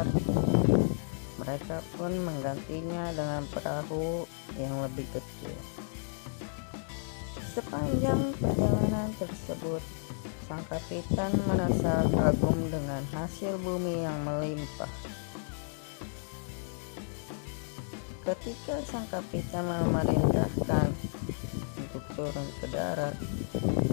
mereka pun menggantinya dengan perahu yang lebih kecil. Sepanjang perjalanan tersebut, sang kapitan merasa kagum dengan hasil bumi yang melimpah. Ketika sang kapitan memerintahkan untuk turun ke darat,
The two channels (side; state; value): right; silent; digital silence